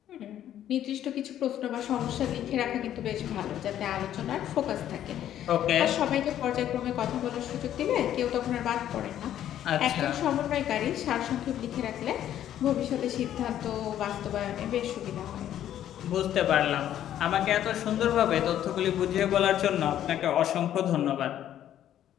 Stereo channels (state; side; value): quieter; right; 11.3 dB